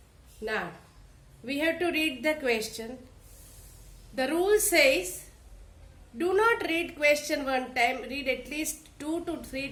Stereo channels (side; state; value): both; identical; correlation 1.00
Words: Now, we have to read the question. The rule says, do not read question one time, read at least 2 to